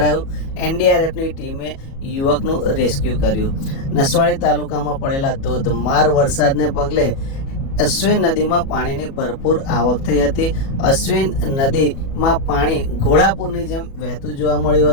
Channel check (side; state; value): right; late; 37 ms